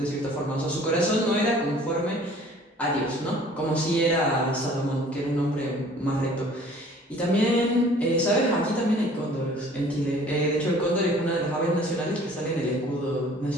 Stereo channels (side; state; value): both; normal; correlation 0.52